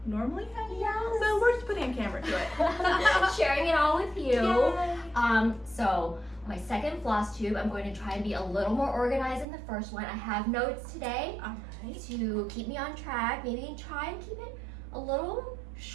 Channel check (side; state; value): left; drops out; at 9.5 s